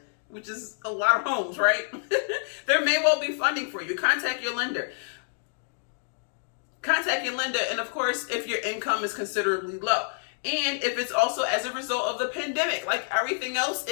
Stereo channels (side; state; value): right; silent; digital silence